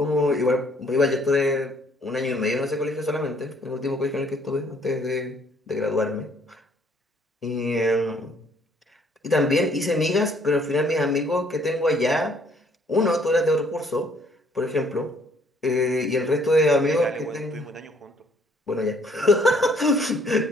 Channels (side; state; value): both; normal; correlation 0.63